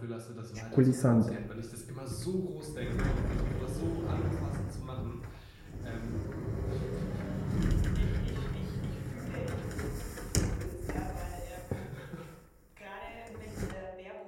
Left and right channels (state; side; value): identical; both; correlation 1.00